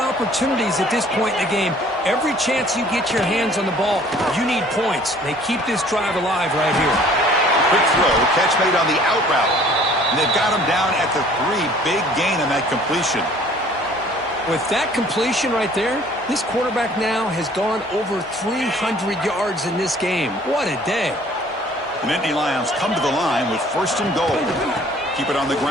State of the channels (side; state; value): both; normal; correlation 0.54